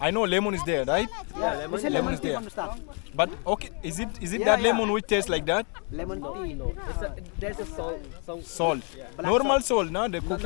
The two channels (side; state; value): right; quieter; 38.1 dB